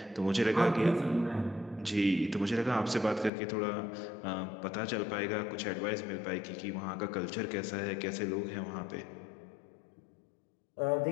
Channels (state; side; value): drops out; right; at 3.3 s